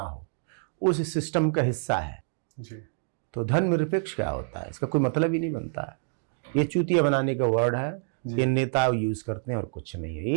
हो, उस सिस्टम का हिस्सा है। जी तो धर्मनिरपेक्ष क्या होता है, इसका कोई मतलब ही नहीं बनता है। ये चूतिया बनाने का वर्ड है, ये नेता यूज करते हैं और कुछ नहीं है।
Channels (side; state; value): left; silent; digital silence